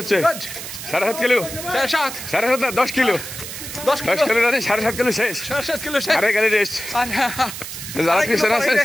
হচ্ছে। 7.5 কিলো 7.5 10 কিলো 10 কিলো রানি 7.5 কিলো শেষ 7.5 কিলো শেষ। আরে গাড়ি রেস্ট যারা পিছনে আছে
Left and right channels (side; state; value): right; noise; hiss, 9 dB below the sound